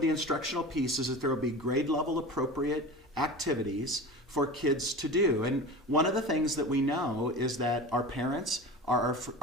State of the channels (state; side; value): normal; both; correlation 0.32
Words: instructional piece is that there will be grade level appropriate activities for kids to do. And one of the things that we know is that our parents are